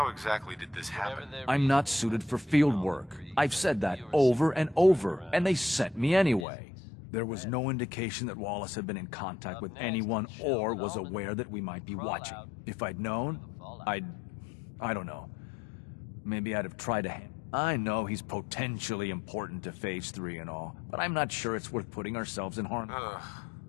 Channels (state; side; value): drops out; right; at 6.5 s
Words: exactly did this happen? I'm not suited for field work. I've said that over and over, and they sent me anyway. There was no indication that Wallace had been in contact with anyone or was aware that we might be watching. If I'd known, I don't know. Maybe I'd have tried to I know he's potentially important to Phase 3 and all, but I'm not sure it's worth putting ourselves in harm.